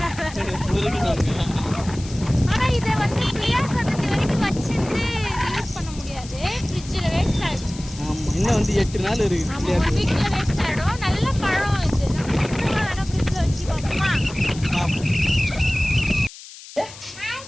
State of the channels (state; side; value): noise; left; hiss, 16 dB below the sound